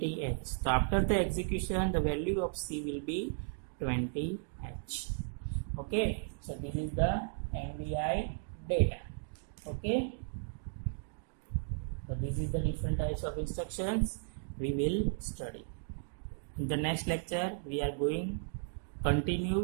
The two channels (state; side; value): silent; left; digital silence